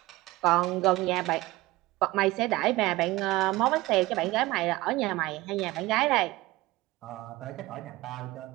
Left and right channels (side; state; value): left; quieter; 19.6 dB